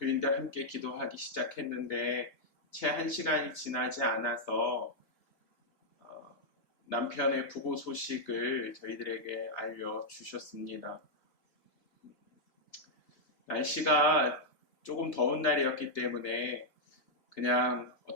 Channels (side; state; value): right; late; 3.3 ms